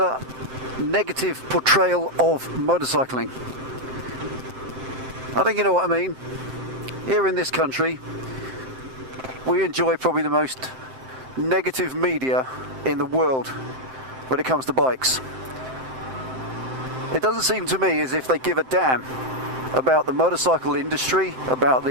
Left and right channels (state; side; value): late; left; 7.7 ms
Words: negative portrayal of motorcycling. I think you know what I mean. Here in this country, we enjoy probably the most negative media in the world when it comes to bikes. It doesn't seem to me as if they give a damn about the motorcycle industry, about